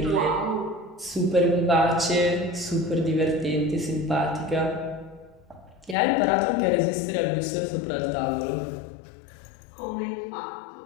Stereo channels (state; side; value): drops out; right; at 6.0 s